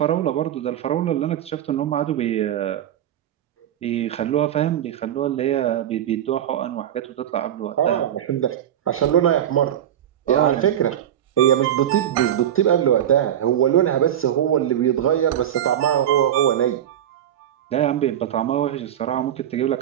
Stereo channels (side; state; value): left; quieter; 10.7 dB